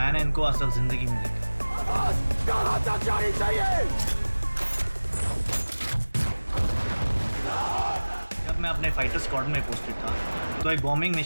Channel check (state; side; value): inverted; both; correlation -1.00